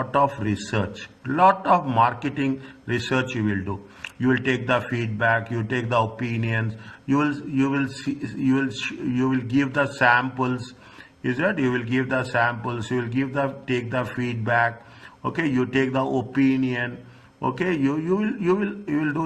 of research, lot of marketing research you will do. You will take the feedback, you take the opinions, you will give the samples. Is that you will give the samples, you will take the feedback, okay, you take the opinion, okay, you will do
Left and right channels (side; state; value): both; identical; correlation 1.00